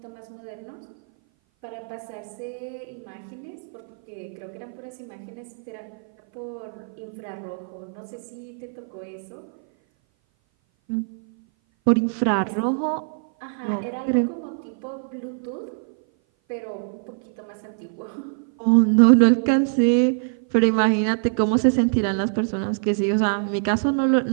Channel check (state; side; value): silent; left; 57 dB below the other